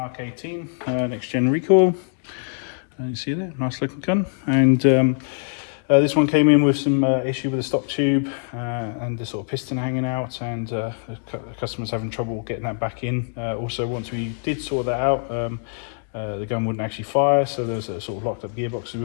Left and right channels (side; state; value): right; silent; 63 dB below the other